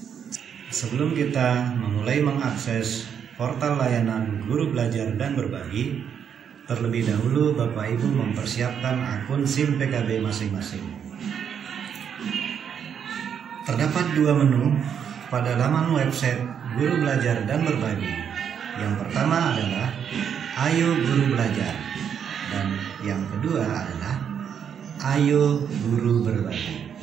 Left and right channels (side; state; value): left; quieter; 8.0 dB